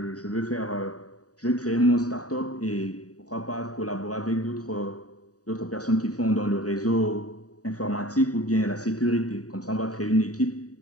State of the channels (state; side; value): late; right; 0.67 ms